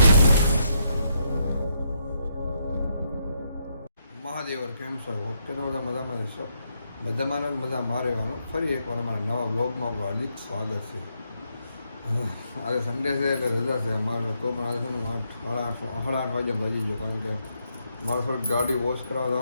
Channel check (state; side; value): inverted; both; correlation -0.77